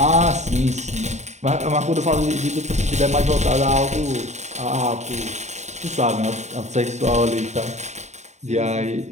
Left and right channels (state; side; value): late; left; 0.33 ms